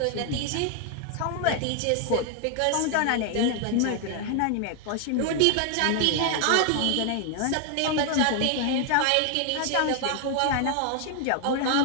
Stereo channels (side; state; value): both; different; correlation 0.00